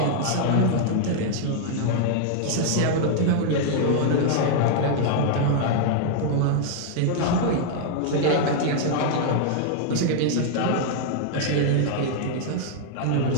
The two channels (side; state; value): both; different; correlation -0.01